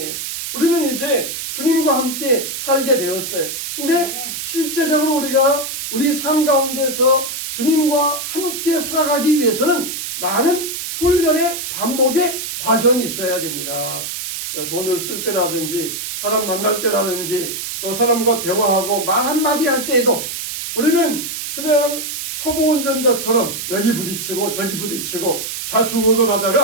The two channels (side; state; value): right; noise; hiss, 5 dB below the sound